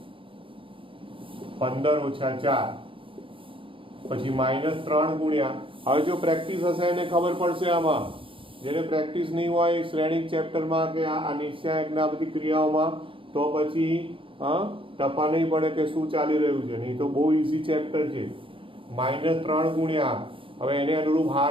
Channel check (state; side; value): late; left; 0.25 ms